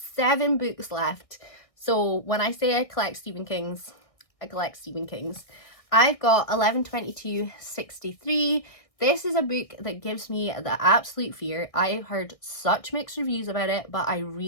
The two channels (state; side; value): late; right; 1.6 ms